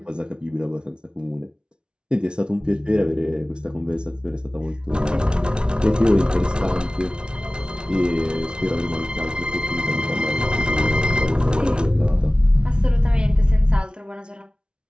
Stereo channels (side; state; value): left; late; 0.056 ms